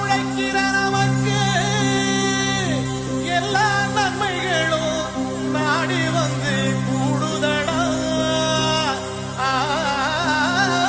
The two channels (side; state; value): both; identical; correlation 1.00